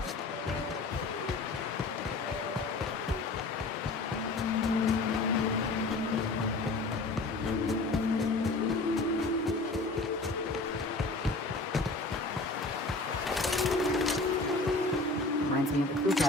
Reminds me of the crew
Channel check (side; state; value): right; quieter; 3.3 dB